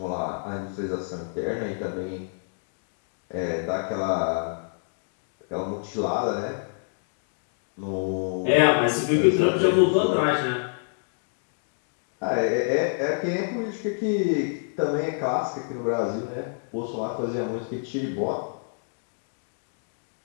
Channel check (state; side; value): silent; right; digital silence